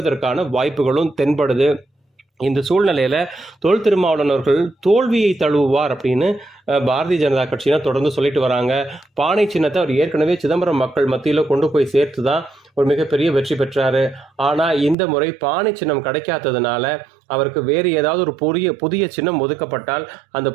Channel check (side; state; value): left; drops out; at 15.0 s